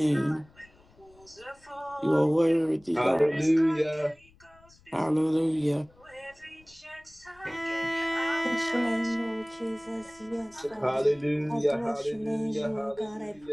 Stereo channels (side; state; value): left; noise; rumble, 28 dB below the sound